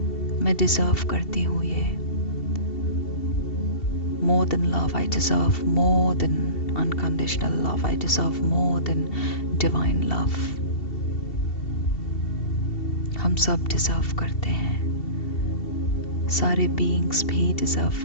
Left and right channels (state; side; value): late; right; 2.7 ms